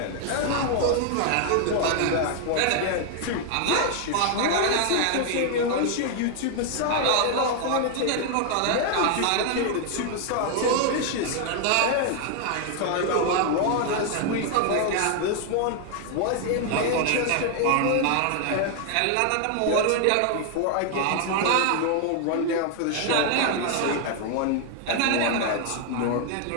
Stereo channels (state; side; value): different; both; correlation 0.00